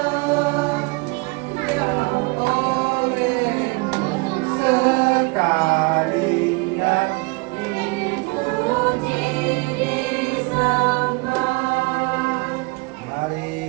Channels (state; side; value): quieter; left; 28.4 dB